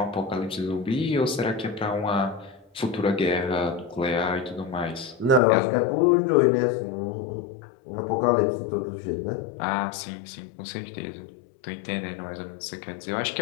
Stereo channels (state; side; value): drops out; right; at 5.4 s